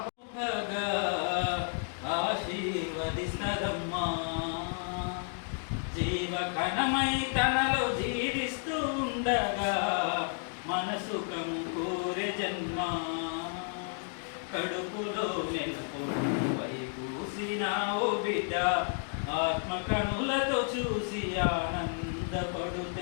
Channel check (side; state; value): right; silent; 57 dB below the other